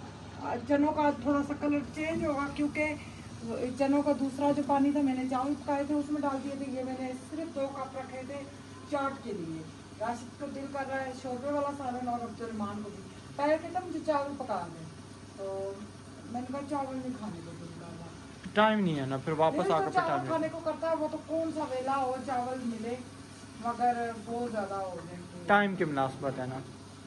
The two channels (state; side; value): identical; both; correlation 1.00